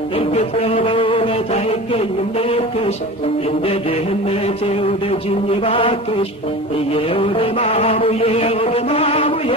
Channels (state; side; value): normal; both; correlation 0.33